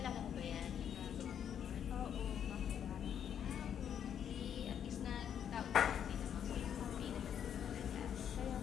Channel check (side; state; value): right; quieter; 8.9 dB